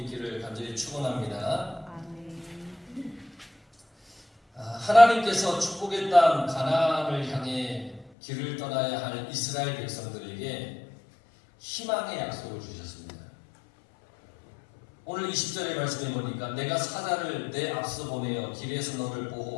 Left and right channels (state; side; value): drops out; right; at 8.1 s